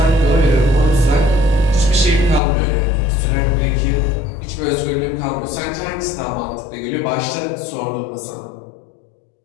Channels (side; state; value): right; drops out; at 2.4 s